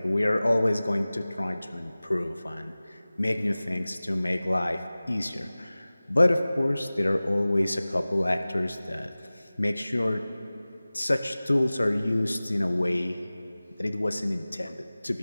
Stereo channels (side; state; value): both; inverted; correlation -0.98